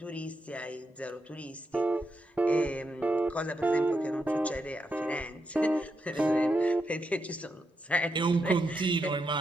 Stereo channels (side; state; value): both; normal; correlation 0.84